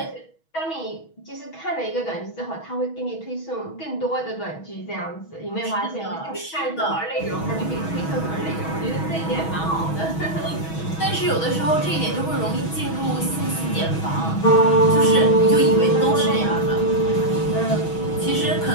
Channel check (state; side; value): late; right; 6.2 ms